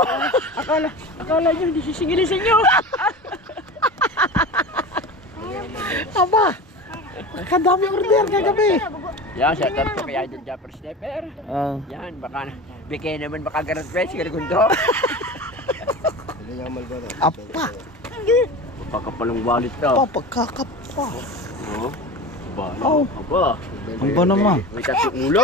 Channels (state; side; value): normal; both; correlation 0.31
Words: Akala nyo, hindi sisingilin sa inyo. Aba, kadami order kagabi. Yan, shoutout po kay Idol Japper Sniper. Yan, baka bigay naman makagraduate si Rigondo. Apa? Pagkapalong wallet to. Pagkakapa. Aba. Ang ba naman? May tatlong